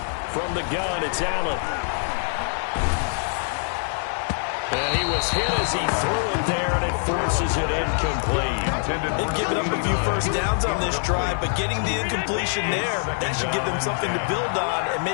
From the gun, it's Allen. And he was hit as he threw it there, and it forces it incomplete. They've given up a few first downs on this drive, but getting the incompletion there, that should give them something to build on and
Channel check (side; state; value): right; silent; 62 dB below the other